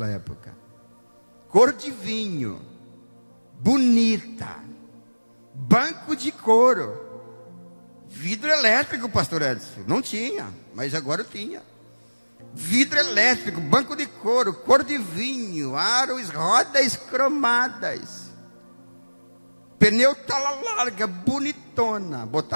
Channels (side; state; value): both; inverted; correlation -1.00